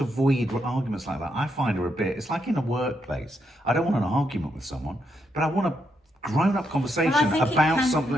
avoid arguments like that, I find are a bit, it's like in a workplace. I don't want an argument with someone, but I want a grown-up conversation about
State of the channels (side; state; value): both; normal; correlation 0.80